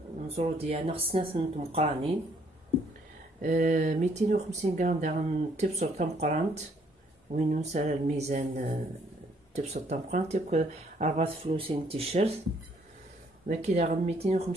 نزرو ديالنا خصنا ثنت مقرانين 250 غرام داغن تبصر تمقرانت وين نسال الميزان تبصر تمقرانت ياك 4 فلوسين تيشيرت داكي داغن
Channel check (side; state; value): both; normal; correlation 0.66